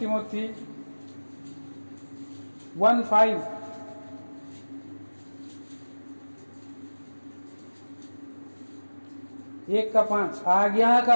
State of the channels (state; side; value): inverted; both; correlation -1.00